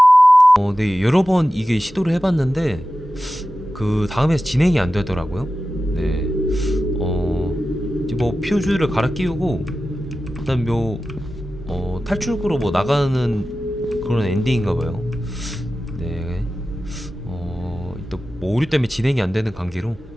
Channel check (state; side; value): normal; both; correlation 0.94